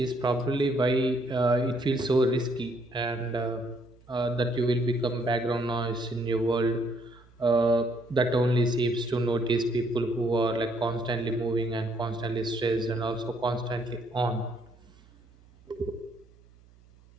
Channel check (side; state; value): right; noise; hum, 27 dB below the sound